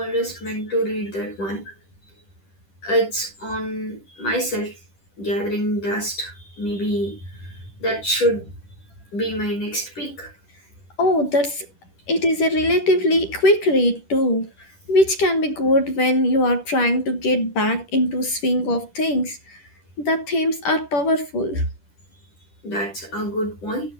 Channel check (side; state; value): right; late; 10 ms